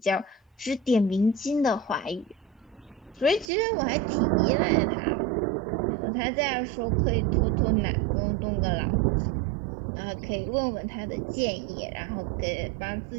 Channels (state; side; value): drops out; left; at 3.5 s